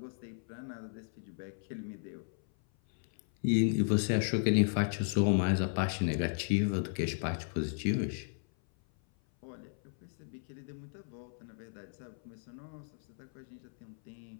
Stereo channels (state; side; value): silent; right; 55 dB below the other